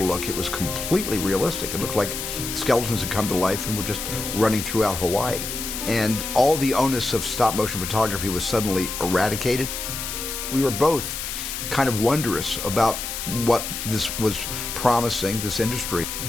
look, it was completely realistic. It looked like skeletons had come to life and were just running throughout Hawaii. And all the onus of stop-motion photography was suddenly eradicated. We were both kind of wondrous about what this was promising, this industry.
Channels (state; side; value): noise; left; hiss, 5 dB below the sound